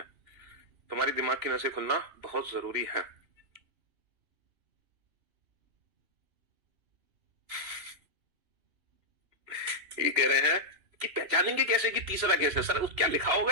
तुम्हारी दिमाग की नसें खुलना बहुत जरूरी है। ये कह रहे हैं कि पहचानेंगे कैसे कि तीसरा केस है? सर क्या लिखा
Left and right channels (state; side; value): late; left; 3.0 ms